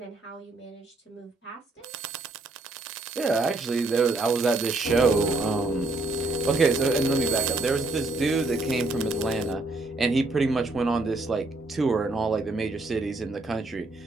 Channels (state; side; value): quieter; left; 3.0 dB